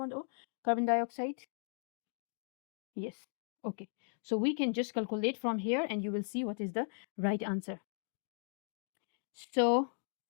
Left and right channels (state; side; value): silent; right; digital silence